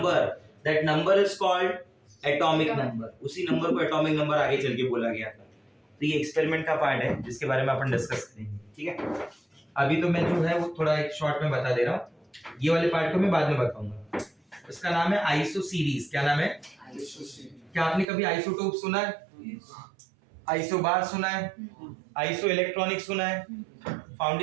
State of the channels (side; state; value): left; drops out; at 18.1 s